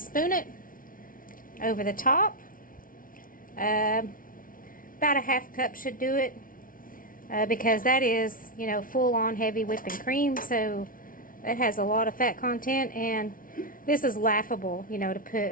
it over the top. About a 1/2 cup should do it, because that is, you know, full-on heavy whipping cream, so it has a lot of fat content, and this is laughable, you know, to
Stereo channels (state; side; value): late; right; 0.40 ms